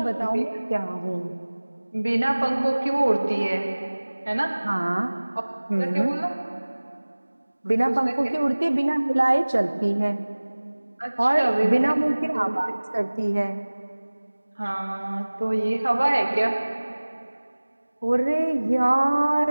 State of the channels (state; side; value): inverted; both; correlation -1.00